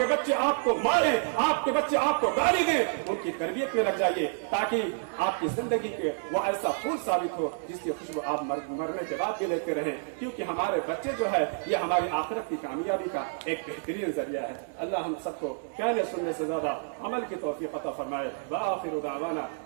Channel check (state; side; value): silent; left; digital silence